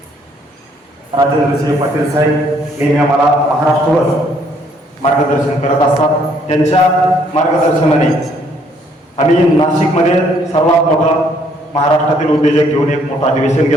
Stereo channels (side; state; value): both; normal; correlation 0.66